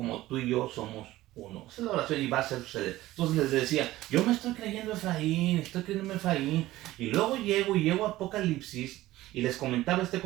tú y yo somos uno. Esa es la oración y va a suceder. Entonces les decía, yo me estoy creyendo Efraín, estoy creyendo Efraín. Y luego llego a Apocalipsis y les comentaba este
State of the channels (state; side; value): quieter; left; 16.4 dB